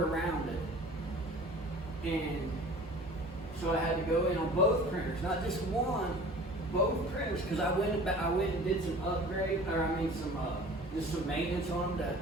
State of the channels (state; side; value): normal; both; correlation 0.44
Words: it. And so I had to go in on both printers, not just one, both printers, because I went and did some upgrade, just some maintenance on them